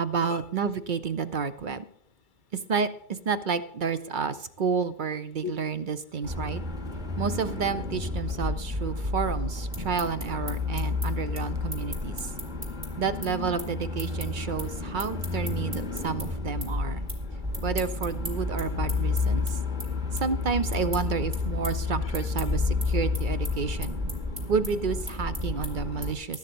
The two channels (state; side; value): late; left; 2.3 ms